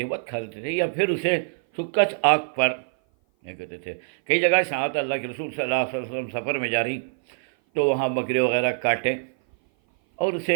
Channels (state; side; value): silent; left; 56 dB below the other